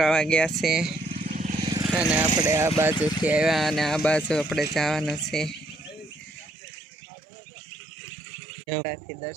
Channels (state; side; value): drops out; left; at 6.5 s